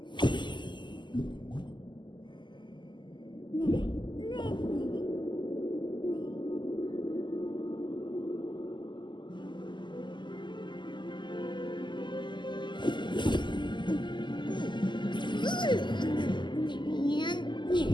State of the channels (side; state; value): right; late; 0.22 ms